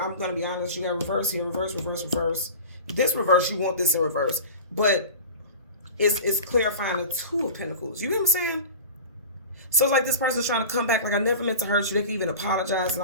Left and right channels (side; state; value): both; inverted; correlation -0.34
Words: going to be honest. You got reverse here, reverse, reverse, reverse. This reverse, you want this in reverse. But it's clarifying the Two of Pentacles. You get what I'm saying? So it's like this person's trying to come back. Like, I never meant to hurt you. They can even apologize and